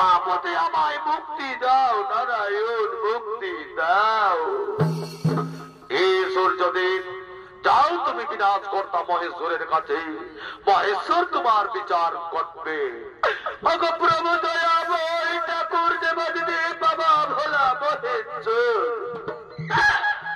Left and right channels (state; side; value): identical; both; correlation 1.00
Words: হতে আমায় মুক্তি দাও নারায়ণ, মুক্তি দাও। এই সূর্যদেব, যাও তুমি বিনাশ কর্তা মহেশ্বরের কাছে, মহেশ্বর তোমার বিচার করবে। প্রভু দয়াময় ঠাকুর দেবাদিদেব বাবা ভোলা মহেশ্বর,